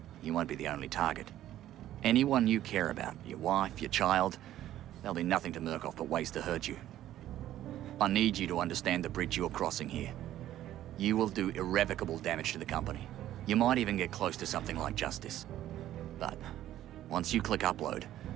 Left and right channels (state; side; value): quieter; left; 12.9 dB